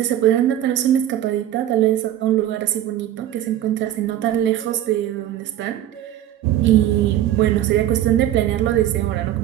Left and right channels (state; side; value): quieter; left; 12.2 dB